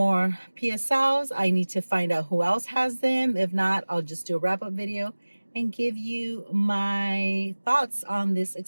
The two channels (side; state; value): both; inverted; correlation -1.00